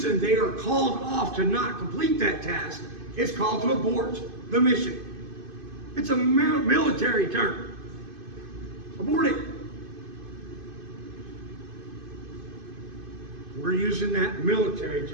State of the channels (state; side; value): late; left; 2.5 ms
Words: they are called off to not complete that task. It's called to abort the mission. It's a military term. Abort it. We're using that military